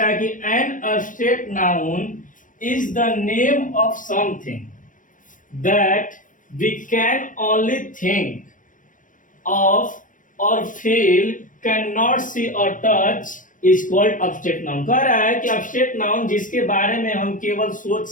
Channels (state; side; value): late; right; 0.38 ms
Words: है कि an object noun is the name of something that we can only think of और फील, कैन नॉट सी और touch is called object noun. कह रहा है कि ऑब्जेक्ट नाउन जिसके बारे में हम केवल सोच